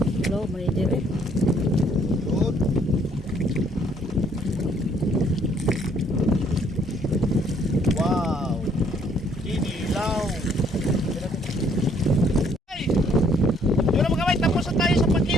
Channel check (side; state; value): both; normal; correlation 0.65